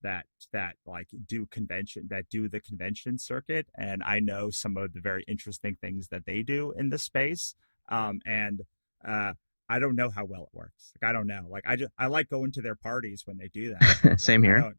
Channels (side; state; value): both; inverted; correlation -1.00